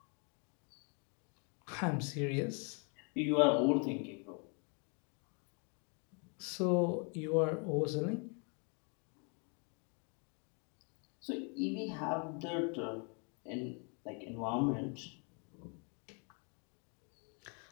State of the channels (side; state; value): right; quieter; 37.1 dB